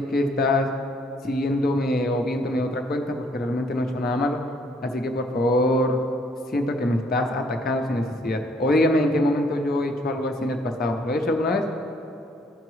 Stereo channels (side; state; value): both; normal; correlation 0.65